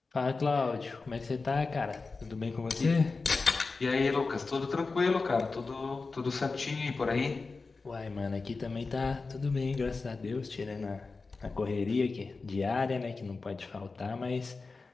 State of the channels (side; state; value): right; quieter; 4.0 dB